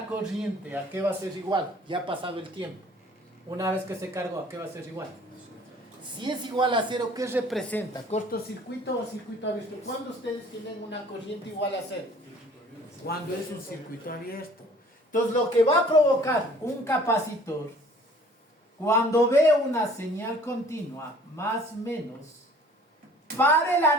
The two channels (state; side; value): normal; both; correlation 0.52